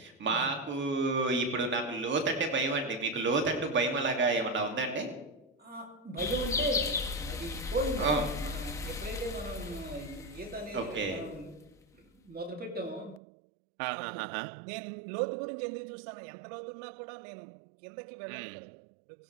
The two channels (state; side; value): drops out; left; at 13.2 s